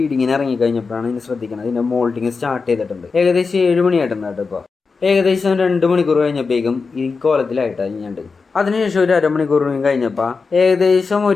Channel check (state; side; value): quieter; right; 4.7 dB